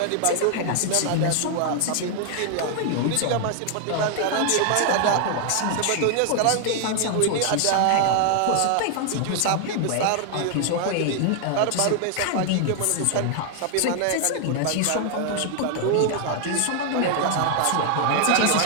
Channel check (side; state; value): both; different; correlation 0.00